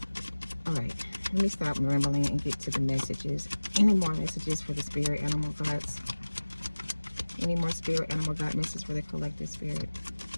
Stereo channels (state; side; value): inverted; both; correlation -1.00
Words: All right, let me stop rambling and get to the messages. Any more messages for the spirit animal guides? Any more spirit animal guide messages for the collective spirit?